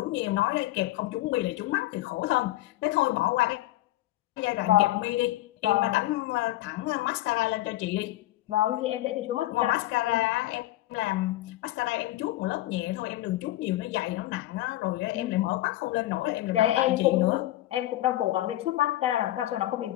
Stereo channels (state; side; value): quieter; right; 16.1 dB